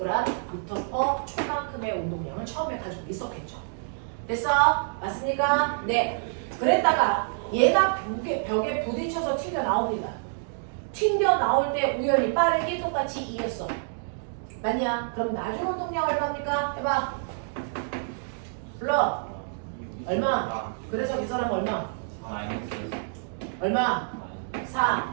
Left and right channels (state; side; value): silent; left; digital silence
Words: 초만큼의 운동량을 처음에 가지고 있었겠죠. 됐어? 맞습니까? 네. 그랬다가 얘가 벽에 부딪혀서 튕겨 나옵니다. 튕겨 나올 때 우연히 빠르게 똑같이 2였어. 맞냐? 그럼 나중 운동량 얼마입니까? 해봐. 불러. 얼마? 그래서 계산하면 얼마? 얼마?